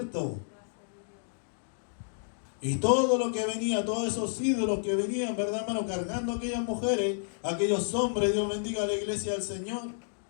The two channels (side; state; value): right; silent; digital silence